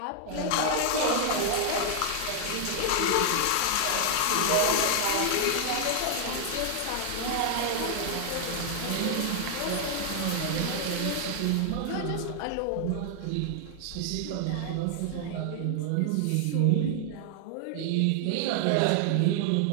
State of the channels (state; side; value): different; both; correlation 0.00